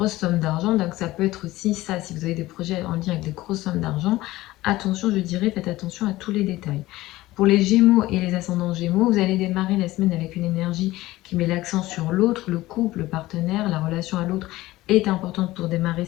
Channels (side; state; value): right; quieter; 17.6 dB